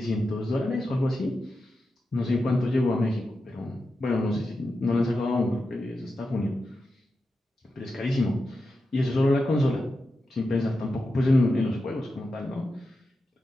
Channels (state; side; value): normal; both; correlation 0.90